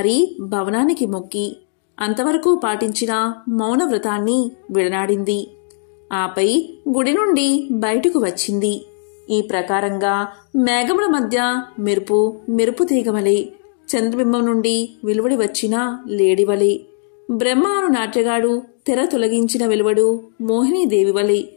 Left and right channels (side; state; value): right; silent; digital silence